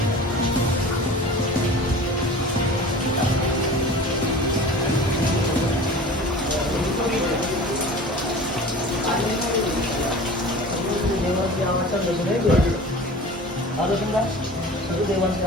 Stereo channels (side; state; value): both; normal; correlation 0.39